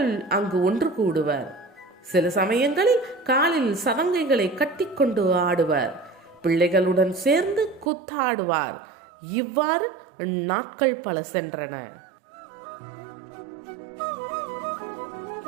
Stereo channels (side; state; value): left; drops out; at 7.9 s